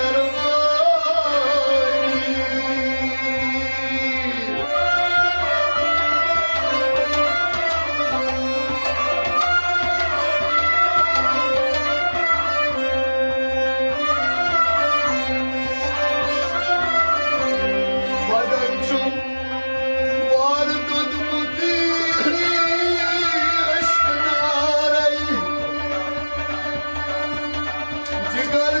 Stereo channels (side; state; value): both; inverted; correlation -1.00